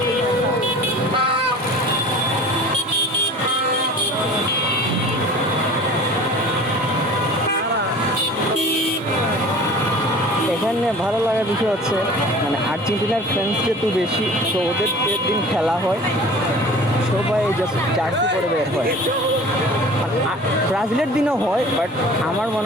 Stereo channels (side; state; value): both; normal; correlation 0.43